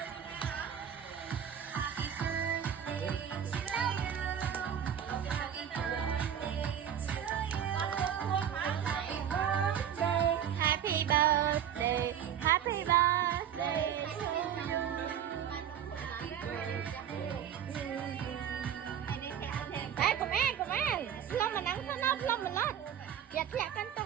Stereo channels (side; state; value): left; quieter; 9.2 dB